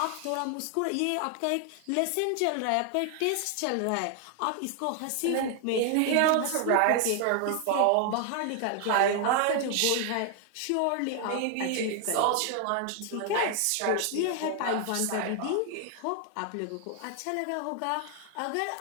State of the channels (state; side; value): different; both; correlation 0.00